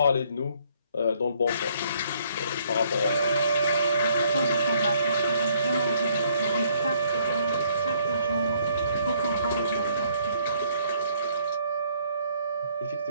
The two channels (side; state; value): both; inverted; correlation -0.66